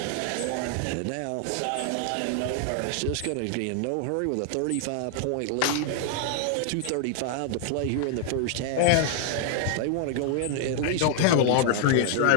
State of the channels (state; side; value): different; both; correlation 0.00